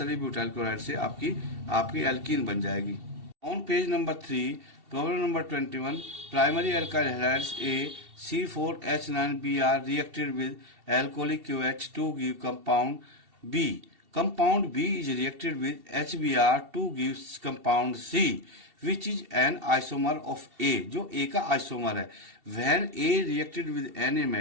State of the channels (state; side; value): late; left; 2.7 ms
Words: butyl chloride से आपकी एल्कीन बन जाएगी. On page number 3, problem number 21, primary alkyl halides A C4H9Br reacted with alcoholic QH to give compound B. Compound B is reacted with HBr to give compound C, which is an isomer of A, जो A का isomer है. When A reacted with Na